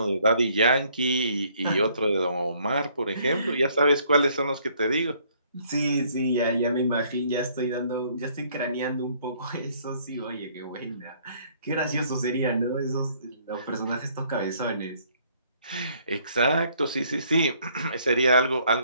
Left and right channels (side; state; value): both; inverted; correlation -0.64